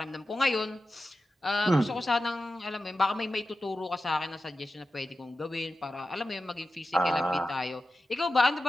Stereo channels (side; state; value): both; normal; correlation 0.92